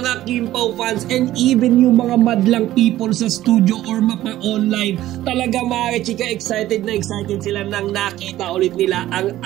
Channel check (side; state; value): left; quieter; 14.5 dB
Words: Kim Pao fans, and even yung mga madlang people sa studio or mapa-online. Talaga mga kachika, excited na excited sila nang nakita ulit nila ang